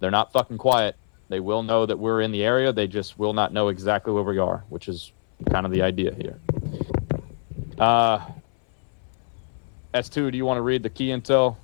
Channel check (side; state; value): right; silent; 60 dB below the other